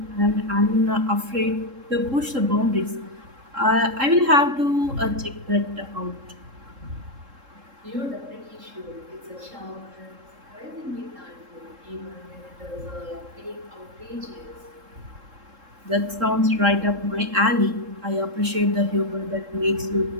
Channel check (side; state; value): left; late; 3.7 ms